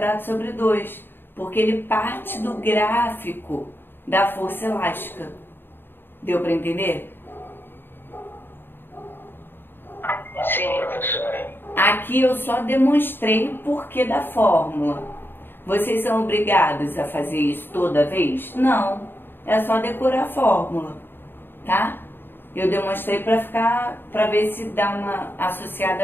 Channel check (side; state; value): right; late; 0.099 ms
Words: sobre 2, porque ele parte do gráfico da força elástica. Deu para entender? Sim, professora. Aqui eu só demonstrei o porquê da fórmula. Vocês são obrigados a fazer isso toda vez? Não. É só decorar a fórmula, tá? Eu demonstrei para ver se dá uma